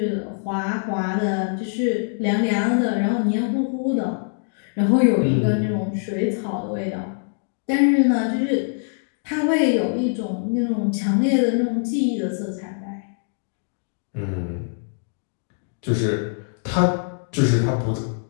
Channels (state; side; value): silent; right; digital silence